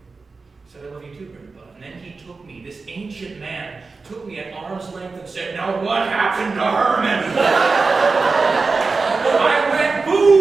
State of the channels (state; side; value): quieter; left; 4.2 dB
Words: said, I love you too, Grandpa. And then he took me, this ancient man, took me at arm's length and said, now what happened to Herman? I went,